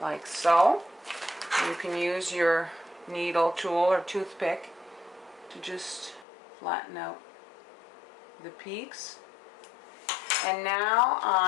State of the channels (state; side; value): drops out; right; at 6.2 s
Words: so. You can use your needle tool or toothpick to just flatten out the peaks. And now